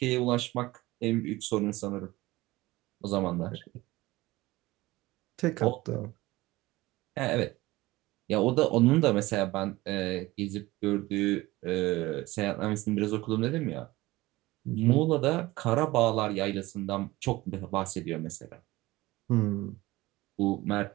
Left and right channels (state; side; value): quieter; left; 19.2 dB